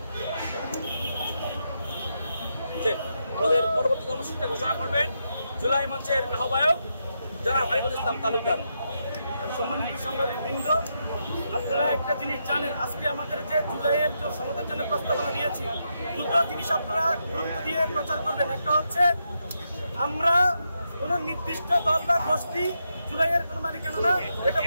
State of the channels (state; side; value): inverted; both; correlation -0.83